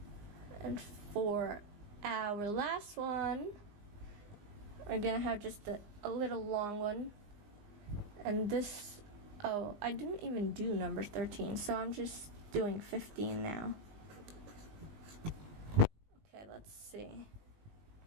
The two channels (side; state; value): left; late; 19 ms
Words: And for our last one, we're gonna have just a little long one. And this, oh, I didn't even do number 13, so I'm just doing 15 now. Okay, let's see.